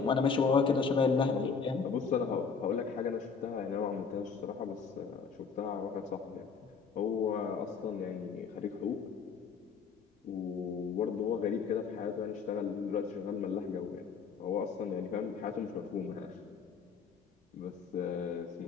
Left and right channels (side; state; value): right; quieter; 5.7 dB